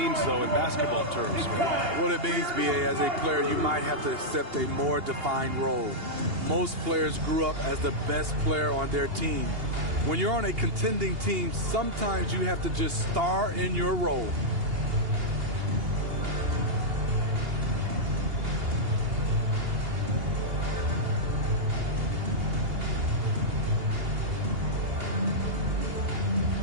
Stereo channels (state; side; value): late; left; 2.8 ms